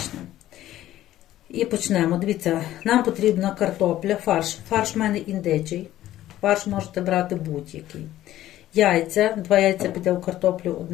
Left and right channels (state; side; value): quieter; right; 13.8 dB